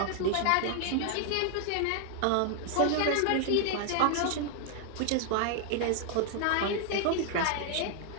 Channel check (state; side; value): different; both; correlation 0.00